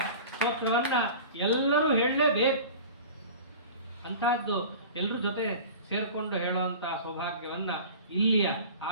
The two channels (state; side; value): inverted; both; correlation -0.38